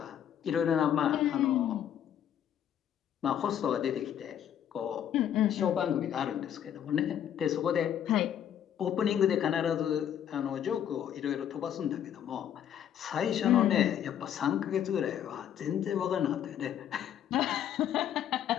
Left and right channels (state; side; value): quieter; right; 9.8 dB